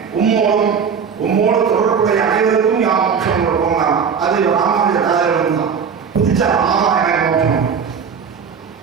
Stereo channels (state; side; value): quieter; left; 6.5 dB